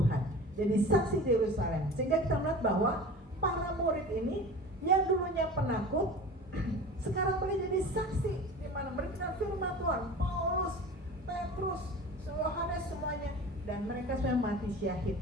Jadi saksi di Yerusalem. Sehingga kita melihat bahwa para murid ini yang dulunya penakut, sekarang boleh jadi saksi di mana memberitakan firman Tuhan. Paulus, Petrus, Yohanes semuanya, dan mereka semua mati syahid.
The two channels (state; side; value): normal; both; correlation 0.37